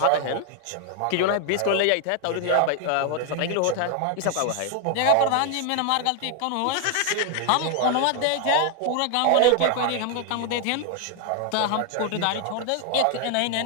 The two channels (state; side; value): different; both; correlation 0.00